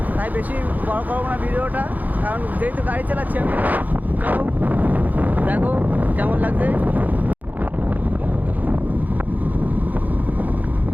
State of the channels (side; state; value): left; late; 0.081 ms